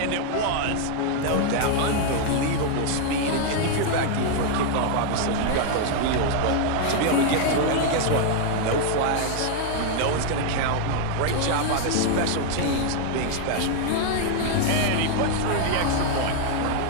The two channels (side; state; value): both; different; correlation 0.00